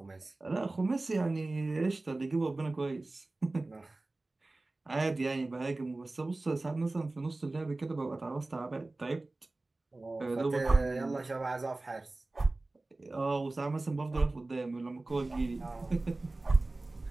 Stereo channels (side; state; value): left; quieter; 3.0 dB